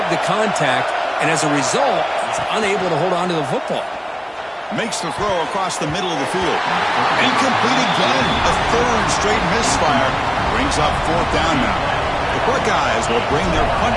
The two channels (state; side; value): identical; both; correlation 1.00